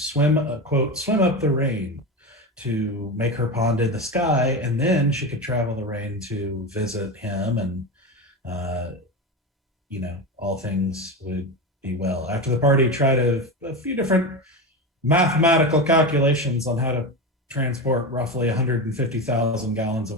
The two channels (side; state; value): both; normal; correlation 0.21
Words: up the rain to make her pond in the sky, and then she could travel the rain to visit him, and all things would be well. After the party tried a few different mathematical calculations on how to transport roughly 150,000 gallons of